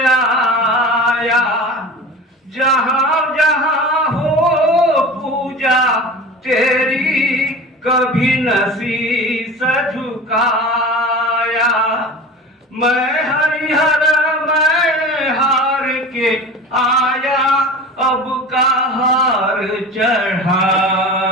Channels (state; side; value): normal; both; correlation 0.35